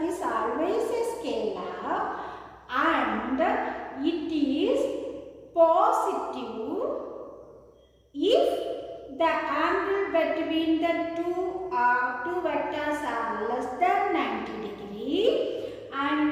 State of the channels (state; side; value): identical; both; correlation 1.00